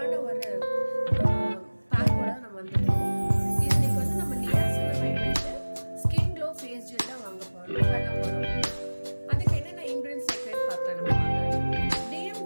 ஒரு பேக்கோட நம்ம வந்துட்டோம். இன்னைக்கு வந்து நம்ம நியாசினமைட் வச்சு ஸ்கின் க்ளோ ஃபேஸ் ஜெல் தான் வாங்க போறோம் பண்ண போறோம். அதுக்கு என்னென்ன இன்கிரிடியன்ட்ஸ் சேர்க்கறது பார்க்கலாம் நம்ம. டிஎம்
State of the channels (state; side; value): inverted; both; correlation -1.00